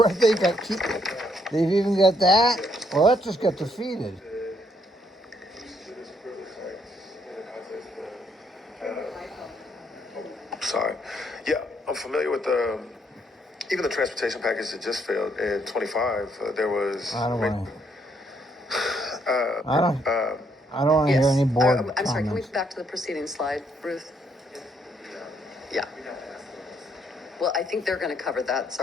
they got they've even got that? Well, that just got defeated. Sorry. Yeah, I'm familiar with even the transportation package that just failed in 25. There was. I don't want to. I don't want to Yes. hear any board I'm sorry, can we comments. go back to the preceding slide, Ruth? Yeah. Well, I think they're going to cover that,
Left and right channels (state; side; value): normal; both; correlation 0.72